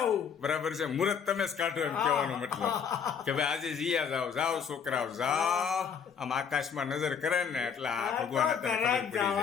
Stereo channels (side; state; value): right; quieter; 7.0 dB